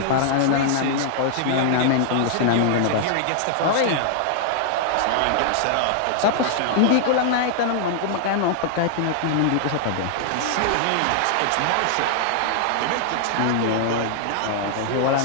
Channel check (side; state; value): both; different; correlation -0.01